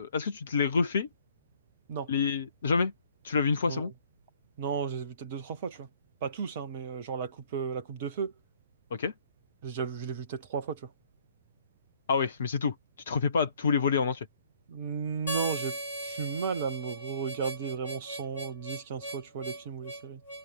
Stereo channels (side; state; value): both; inverted; correlation -0.60